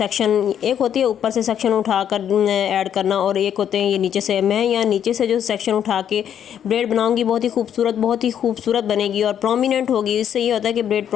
एक होती है ऊपर से सेक्शन उठा कर ऐड करना, और एक होते हैं ये नीचे से। मैं यहाँ नीचे से जो सेक्शन उठा के ब्रेड बनाऊंगी, बहुत ही खूबसूरत बनेगी और प्रोमिनेंट होगी। इससे ये होता है कि ब्रेड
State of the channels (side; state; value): right; quieter; 9.3 dB